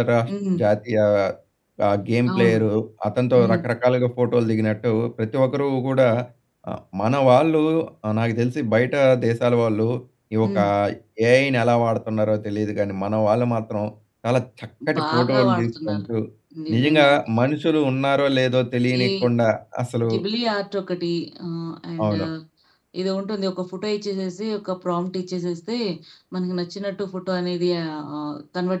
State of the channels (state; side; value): identical; both; correlation 1.00